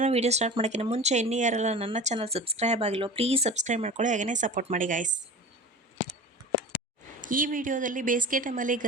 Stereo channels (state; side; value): normal; both; correlation 0.35